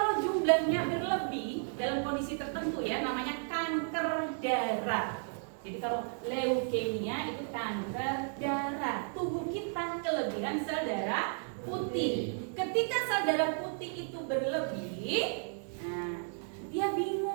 jumlahnya berlebih dalam kondisi tertentu ya, namanya kanker darah. Jadi kalau leukemia itu kanker darah. Tubuh kita kelebihan sel darah putih. Ketika sel darah putih itu berlebih, nah, dia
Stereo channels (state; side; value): silent; left; 55 dB below the other